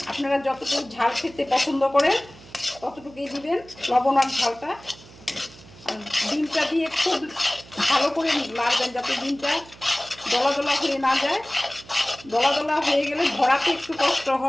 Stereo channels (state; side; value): noise; right; hum, 21 dB below the sound